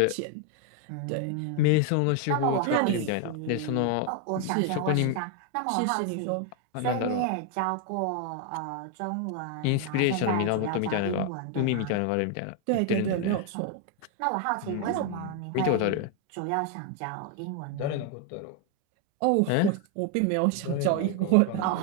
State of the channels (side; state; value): both; different; correlation 0.01